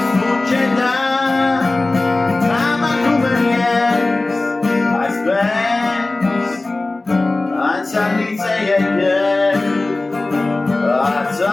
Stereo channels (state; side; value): quieter; right; 3.1 dB